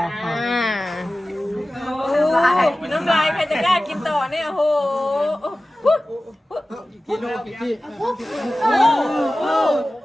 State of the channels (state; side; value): normal; both; correlation 0.96